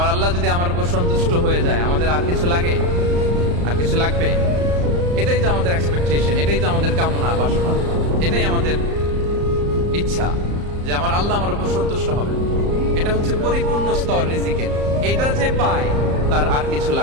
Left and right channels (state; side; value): late; left; 34 ms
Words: আল্লাহ যদি আমার উপর সন্তুষ্ট হয়ে যায়, আমাদের আর কিছু লাগে? আর কিছু লাগবে? এটাই তো আমাদের এক্সপেকটেশন, এটাই তো আমাদের কামনা বাসনা, এটাই আমাদের ইচ্ছা যে আমার আল্লাহ আমার উপর সন্তুষ্ট হবে। এটা হচ্ছে পরিপূর্ণ স্তর রিজিকের। এটা যে পায় তার আর কিছু